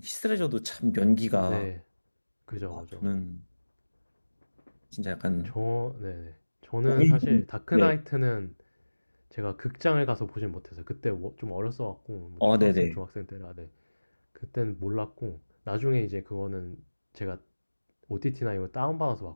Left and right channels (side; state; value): both; inverted; correlation -1.00